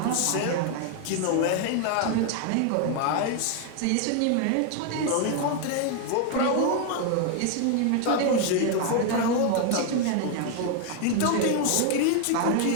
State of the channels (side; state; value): both; different; correlation 0.00